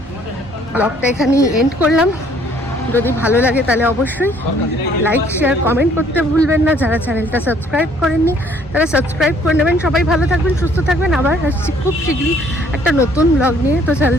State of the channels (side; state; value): both; normal; correlation 0.61